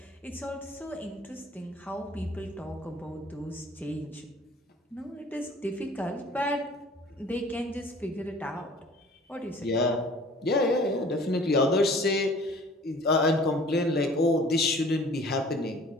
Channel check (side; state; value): both; normal; correlation 0.49